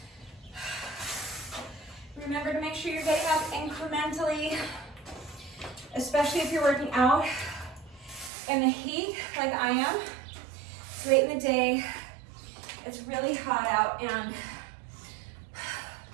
Remember to make sure you're getting up incrementally, especially if you're working out in the heat like I am. It's late in the day. It's really hot out and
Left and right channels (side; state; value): left; drops out; at 8.3 s